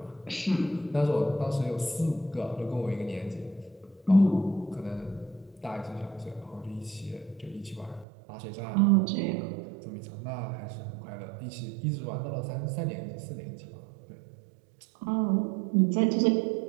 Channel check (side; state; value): left; drops out; at 8.1 s